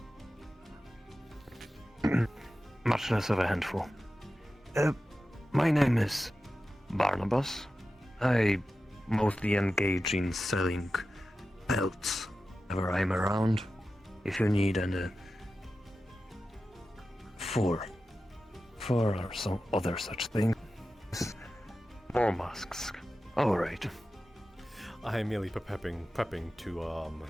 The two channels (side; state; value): both; normal; correlation 0.93